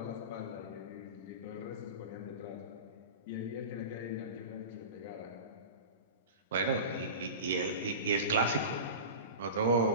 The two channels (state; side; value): inverted; both; correlation -0.30